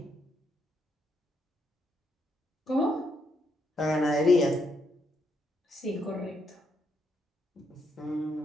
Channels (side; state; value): both; normal; correlation 0.77